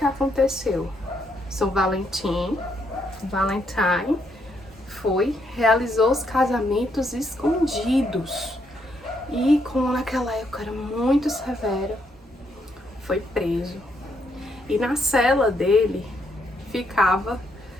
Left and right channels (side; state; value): both; normal; correlation 0.75